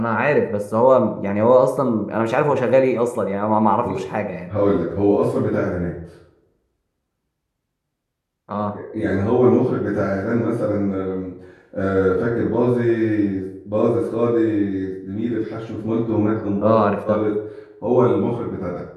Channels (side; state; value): both; identical; correlation 1.00